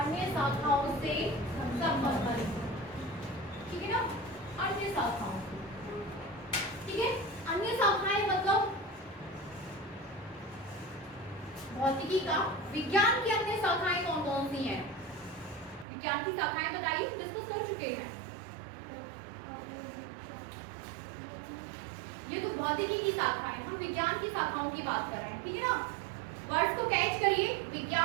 शाखाओं से संबंधित, ठीक है ना, अन्य शाखाओं से, ठीक है। अन्य शाखाएं मतलब भौतिकी का विज्ञान की अन्य शाखाएं कौन कौन सी हैं, विज्ञान की शाखाएं बताइए, डिस्कस कर चुके हैं। ये तो भौतिकी की शाखाएं, हम विज्ञान की शाखाओं की बात कर रहे हैं, ठीक है ना। वर्ड्स को कैच करिए,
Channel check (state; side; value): drops out; left; at 15.9 s